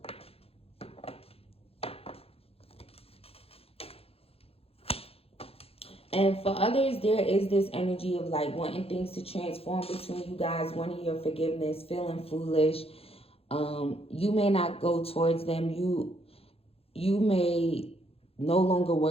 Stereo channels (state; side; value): late; right; 0.28 ms